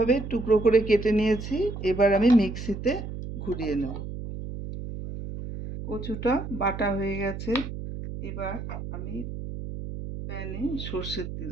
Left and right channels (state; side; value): noise; right; hum, 8 dB below the sound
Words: টুকরো করে কেটে নিয়েছি। এবার আমি মিক্সিতে ঘুরিয়ে নেব। কচুটা বাটা হয়ে গেছে। এবার আমি প্যানে সর্ষের তেল